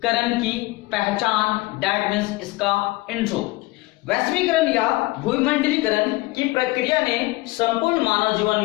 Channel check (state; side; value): quieter; right; 20.9 dB